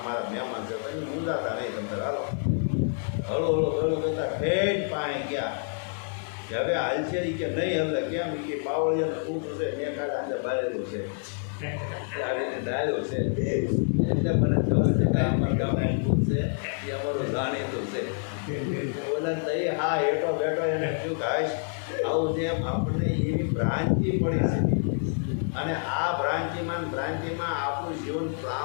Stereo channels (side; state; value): right; silent; 60 dB below the other